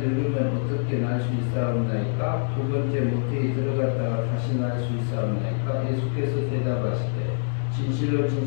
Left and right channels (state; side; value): silent; right; digital silence